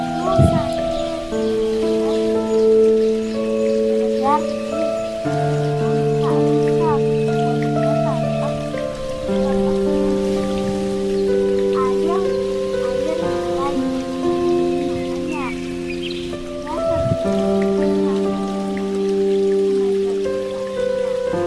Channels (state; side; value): identical; both; correlation 1.00